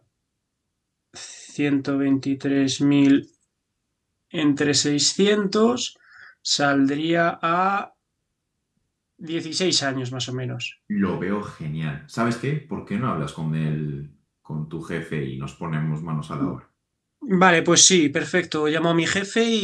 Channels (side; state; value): both; identical; correlation 1.00